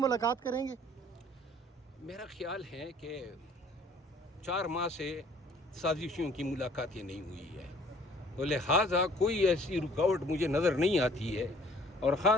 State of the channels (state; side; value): normal; both; correlation 0.55